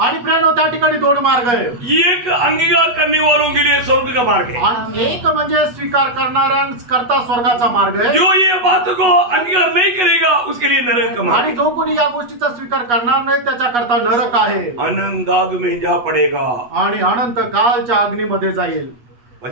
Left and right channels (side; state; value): left; late; 8.1 ms